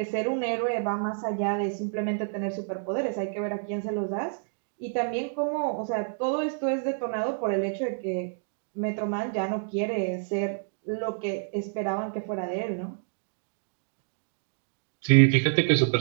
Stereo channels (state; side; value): silent; left; digital silence